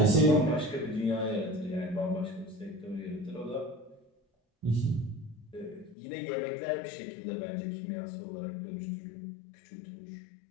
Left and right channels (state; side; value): drops out; right; at 6.0 s